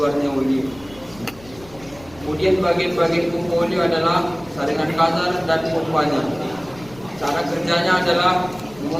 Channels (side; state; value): left; noise; rumble, 22 dB below the sound